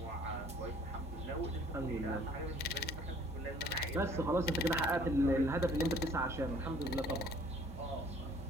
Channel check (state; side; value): normal; both; correlation 0.56